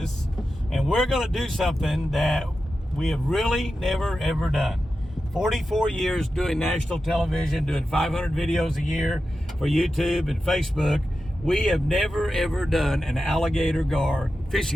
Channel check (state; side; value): normal; both; correlation 0.91